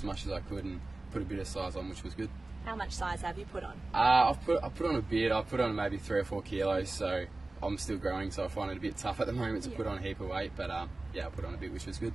much as I could and put a bit of size on, which was good. How much size have you put on? I put on a bit. I put on maybe 3 or 4 kilos, so I'm still growing, so I find it a bit tough at the moment to put on a heap of weight, but yeah, I put on a bit, which was good.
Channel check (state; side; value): quieter; left; 3.1 dB